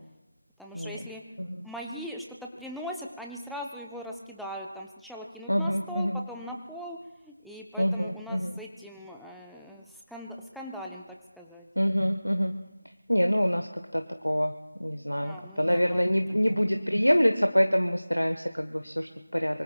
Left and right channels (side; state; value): both; inverted; correlation -0.96